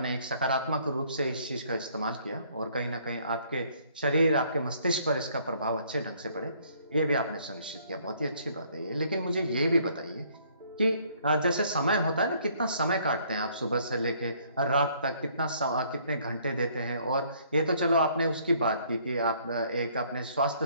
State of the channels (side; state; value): both; inverted; correlation -0.63